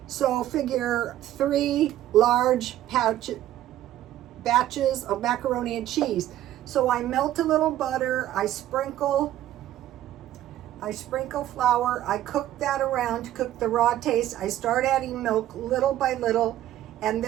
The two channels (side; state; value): left; quieter; 13.2 dB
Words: So figure 3 large batches of macaroni and cheese. So I melt a little butter, I sprinkle flour, I cook that around to cook the raw taste. I start adding milk little by little, and